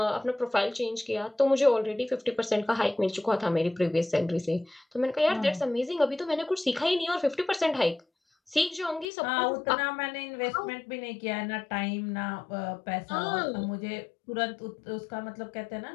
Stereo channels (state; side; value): drops out; right; at 9.1 s